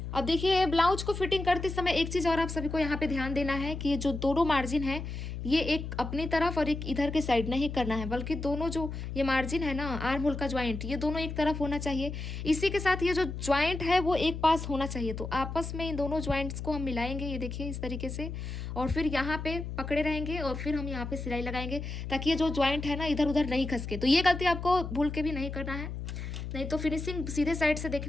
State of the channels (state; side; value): noise; left; hum, 6 dB below the sound